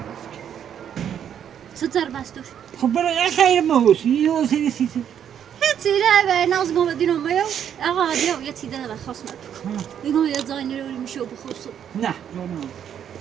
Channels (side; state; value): left; quieter; 9.1 dB